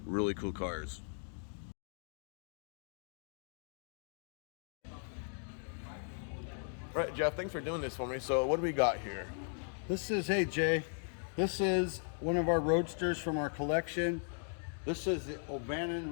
really cool cars. Right, Jeff, thanks for doing this for me. So what do we got here? Hey Jay, this is one of our roadsters from our collection. This is the O'Bannon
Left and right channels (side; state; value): right; silent; 53 dB below the other